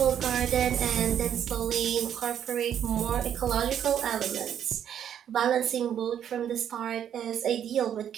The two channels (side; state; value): left; quieter; 9.4 dB